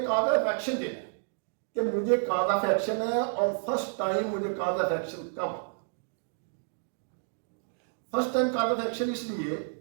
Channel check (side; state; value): left; silent; digital silence